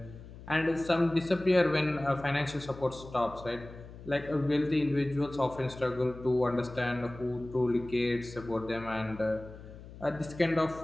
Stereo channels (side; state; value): left; noise; hum, 16 dB below the sound